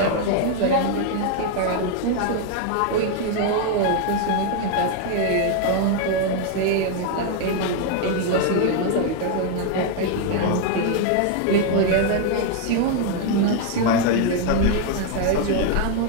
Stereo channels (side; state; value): both; different; correlation 0.01